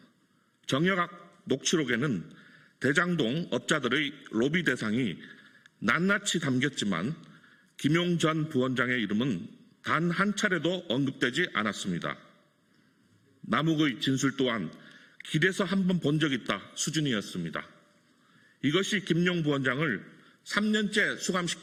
정여각 녹취록에는 대장동 업자들의 로비 대상이 낱낱이 담겼지만 김용 전 부원장의 이름은 단 한 차례도 언급되지 않았습니다. 남욱의 진술 또한 길에서 한번 본 적 있다 수준이었습니다. 이것이 김용 부원장을 3년째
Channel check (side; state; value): both; identical; correlation 1.00